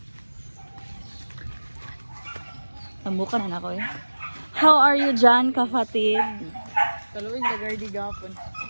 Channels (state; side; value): inverted; both; correlation -1.00